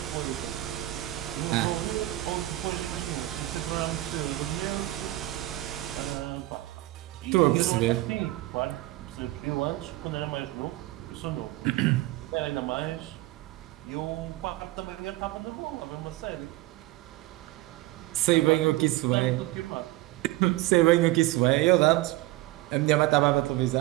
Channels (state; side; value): quieter; left; 17.7 dB